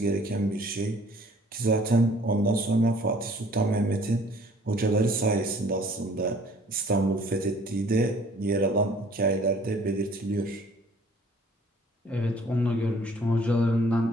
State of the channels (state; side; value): normal; both; correlation 0.55